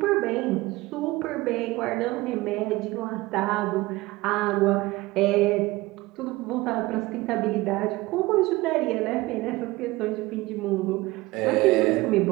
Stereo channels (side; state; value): left; quieter; 20.3 dB